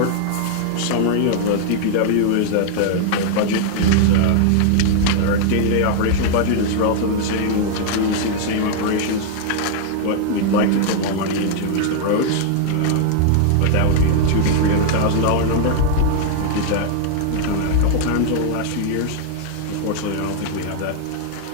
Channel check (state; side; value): different; both; correlation 0.00